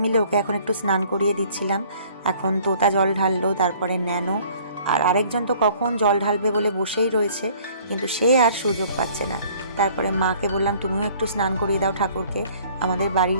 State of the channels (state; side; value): inverted; both; correlation -0.55